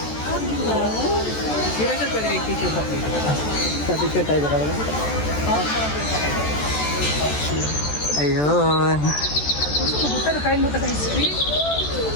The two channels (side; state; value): right; late; 14 ms